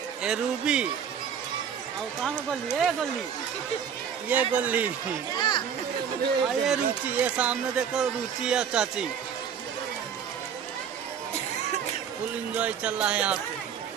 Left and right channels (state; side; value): quieter; left; 7.7 dB